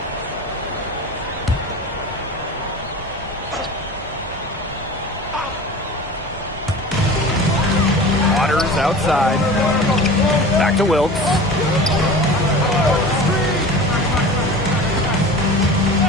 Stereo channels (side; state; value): both; normal; correlation 0.36